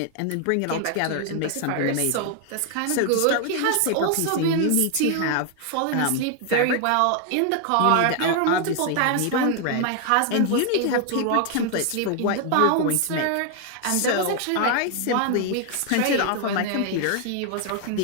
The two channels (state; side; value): different; both; correlation 0.00